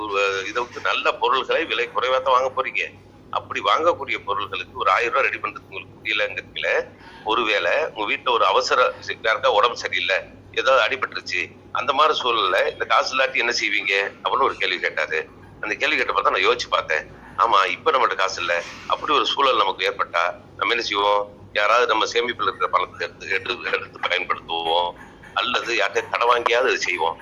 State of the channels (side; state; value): both; identical; correlation 1.00